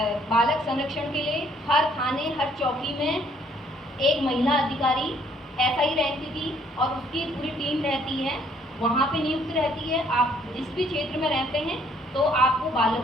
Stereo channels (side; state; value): both; normal; correlation 0.64